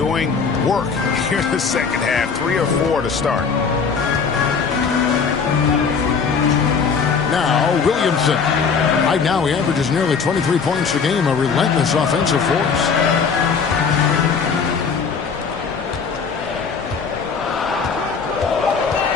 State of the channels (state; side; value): quieter; right; 5.7 dB